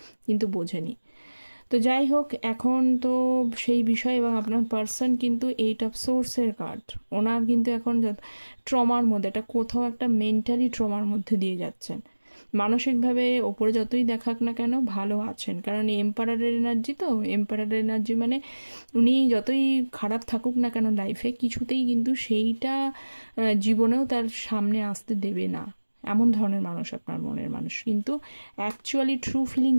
কিন্তু বোঝেনি। তো যাই হোক, এখন তো সেই বিষয়, এবং আপনার পার্সন কিন্তু 8 অফ সোর্সের কার্ড, ওনার কিন্তু এখন ট্রমার মধ্যে, এটা কোথাও একটা মেন্টালি ট্রমার মধ্যে দিয়ে যাচ্ছেন। মানসিকভাবে ওপরে যতই দেখাক না কেন ভালো আছেন, কারণ এম্পারারের এনার্জি, তো এম্পারারের এনার্জি মানে উনি যতই খারাপ থাকুক না কেন লাইফে, কিছুতেই কিন্তু সেইটা জীবনেও তার সামনে আসতে দেবে না, এমন ধরনের মানুষ আপনার মনের মানুষ। কিন্তু অ্যাকচুয়ালি ট্রু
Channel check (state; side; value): inverted; both; correlation -1.00